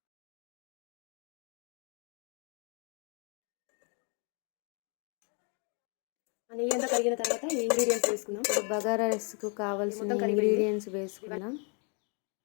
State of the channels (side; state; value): right; quieter; 37.8 dB